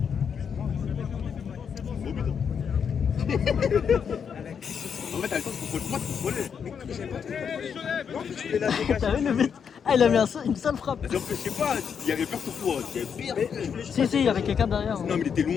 Au but. En fait, t'as le temps de contrôler. Non, tu fais la dégage. T'as vu le but? Ah, il a mis une seule frappe. Je sais pas, il y avait peur pour toi. Il y avait pire. Si, il y avait quelqu'un derrière. Non, mais il était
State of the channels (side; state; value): right; quieter; 7.1 dB